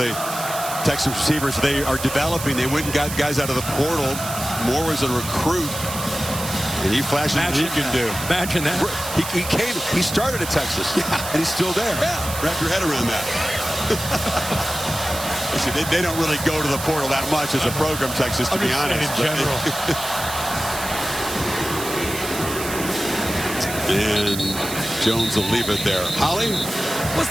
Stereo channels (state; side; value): noise; right; hiss, 8 dB below the sound